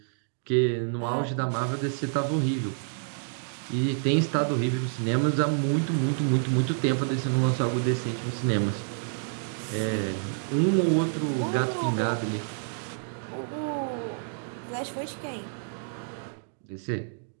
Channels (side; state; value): left; silent; digital silence